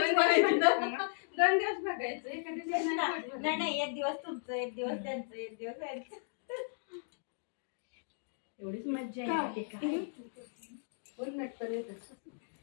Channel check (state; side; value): silent; right; digital silence